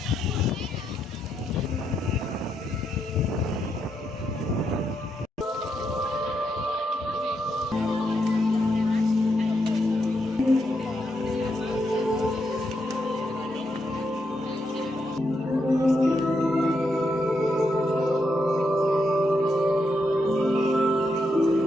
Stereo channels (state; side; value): normal; both; correlation 0.81